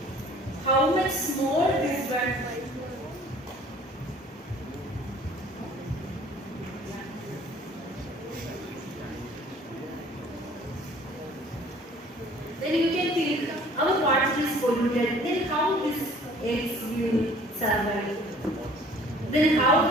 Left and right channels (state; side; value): normal; both; correlation 0.52